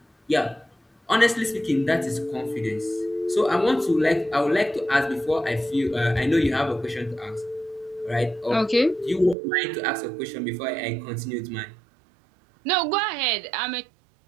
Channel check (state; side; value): drops out; left; at 9.3 s